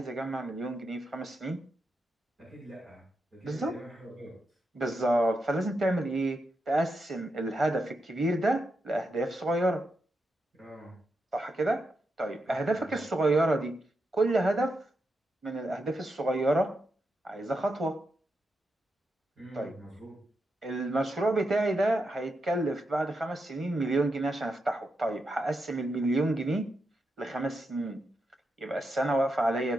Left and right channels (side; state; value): both; normal; correlation 0.85